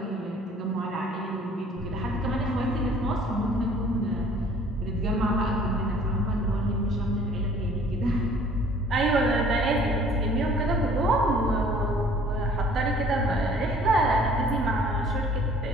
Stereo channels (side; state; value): both; normal; correlation 0.53